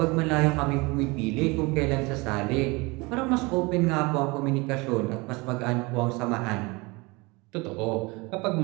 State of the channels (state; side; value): quieter; left; 25.5 dB